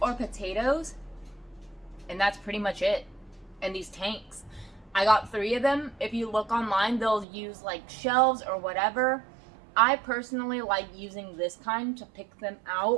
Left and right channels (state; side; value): drops out; left; at 7.2 s